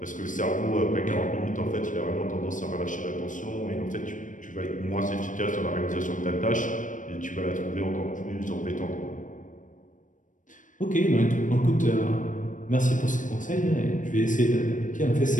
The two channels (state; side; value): late; right; 0.37 ms